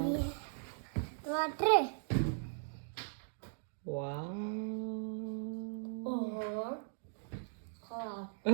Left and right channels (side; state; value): left; silent; digital silence